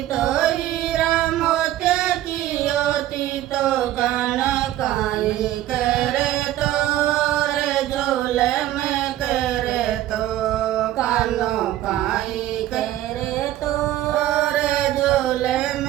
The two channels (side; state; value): left; quieter; 13.7 dB